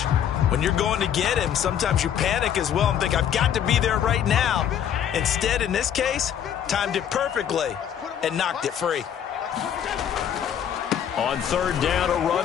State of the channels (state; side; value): quieter; right; 9.3 dB